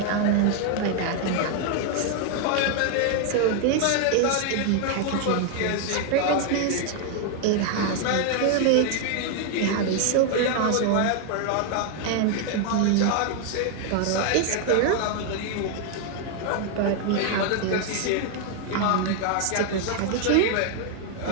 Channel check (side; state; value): both; different; correlation 0.00